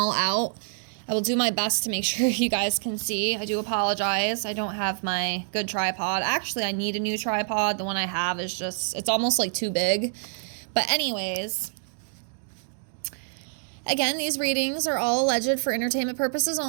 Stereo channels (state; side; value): silent; left; digital silence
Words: out. I will do my best to make sure you guys can see. I do apologize. I don't have my good tripod. Actually, I need a new tripod. The one I have is just, it's almost like too big. But anyways, again, these readings are all alleged for entertainment purposes